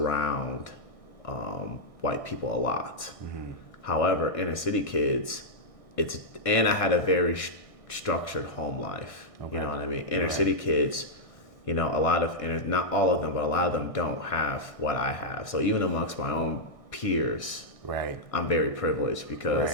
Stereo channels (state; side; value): late; right; 1.6 ms